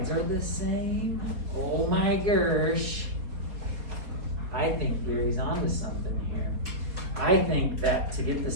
are the same? Oh my gosh. I think Gary's onto something here. I think that to get the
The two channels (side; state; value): left; late; 4.2 ms